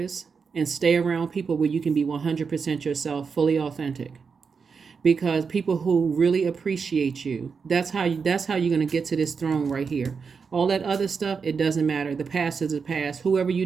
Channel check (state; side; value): quieter; left; 5.5 dB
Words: and stay around people where you can be 100% yourself, fully authentic. Because people who really appreciate you, that's how you're going to get to this throne right here. All that other stuff, it doesn't matter. The past is the past. Whoever you